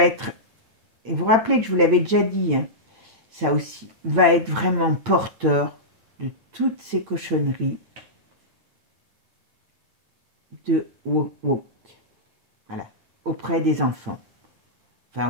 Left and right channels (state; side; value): late; left; 8.9 ms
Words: être... Et vous vous rappelez que je vous l'avais déjà dit, hein, ça aussi, va être vraiment porteur de toutes ces cochonneries de woke, voilà, auprès des enfants, enfin